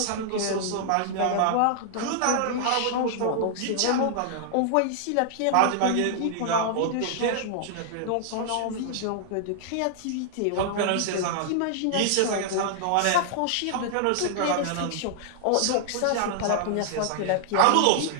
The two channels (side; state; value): both; different; correlation -0.01